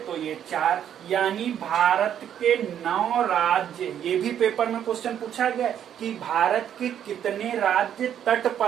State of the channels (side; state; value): left; quieter; 9.7 dB